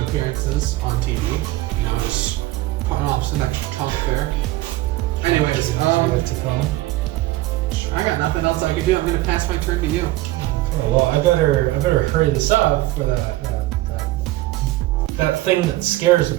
appearances on TV. You know, just putting off some extra talk there. Anyways, As you like to call him. I got nothing else I can do. I'm gonna pass my turn to you. Oh, well, I better hurry this up for that thing that scares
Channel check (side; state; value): left; quieter; 17.2 dB